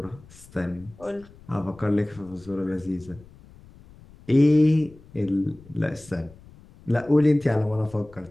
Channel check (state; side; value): noise; left; rumble, 23 dB below the sound